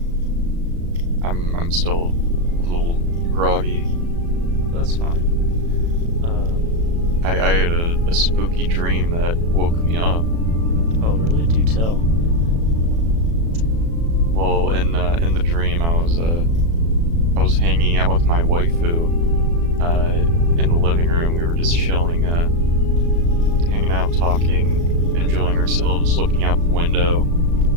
I'm still a little groggy. That's fine. I had a spooky dream that woke me up. Oh, really? Do tell. Well, in the dream, I was hanging out with my waifu in the living room. We were just chilling, hanging hanging out, talking, enjoying ourselves, looking out the window,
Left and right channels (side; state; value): left; late; 36 ms